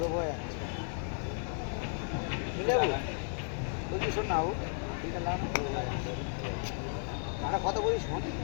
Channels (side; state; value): right; silent; 55 dB below the other